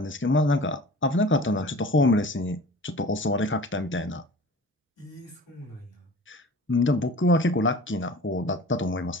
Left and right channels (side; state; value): both; normal; correlation 0.41